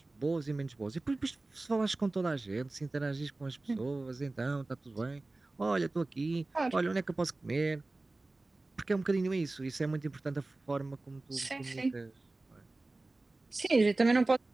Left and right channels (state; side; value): quieter; left; 3.1 dB